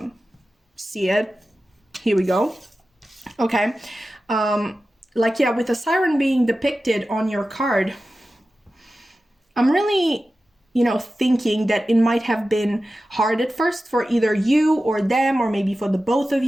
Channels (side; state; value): both; normal; correlation 0.94